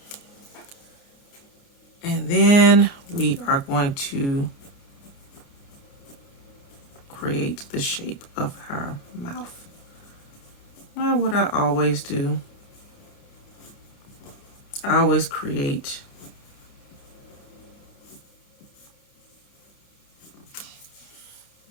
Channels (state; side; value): late; right; 29 ms